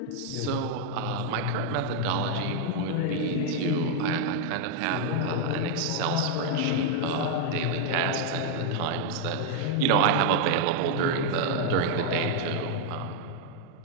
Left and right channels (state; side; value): different; both; correlation 0.00